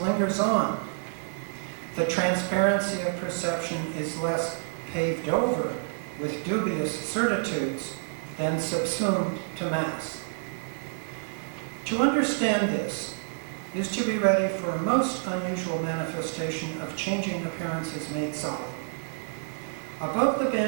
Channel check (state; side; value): silent; left; digital silence